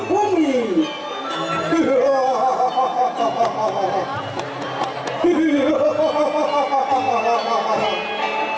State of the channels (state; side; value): identical; both; correlation 1.00